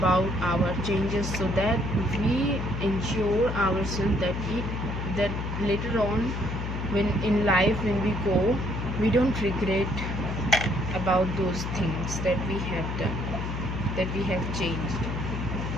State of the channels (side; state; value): left; noise; hum, 3 dB below the sound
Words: our changes, so that we ensure ourselves that later on, when in life, when we go, we don't regret about those things that we have done, that we have changed.